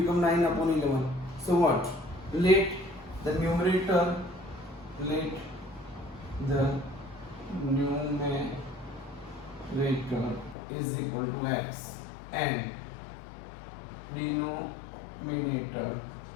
9 upon 11. So what? Let the numerator is equal to x and denominator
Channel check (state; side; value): drops out; right; at 10.6 s